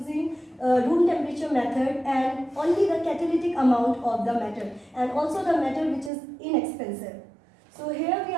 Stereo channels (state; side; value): drops out; left; at 6.1 s